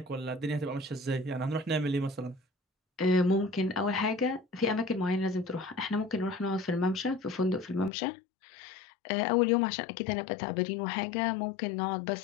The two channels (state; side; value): drops out; right; at 7.9 s